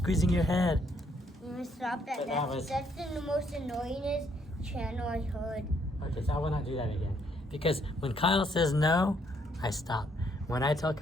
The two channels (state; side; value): normal; both; correlation 0.70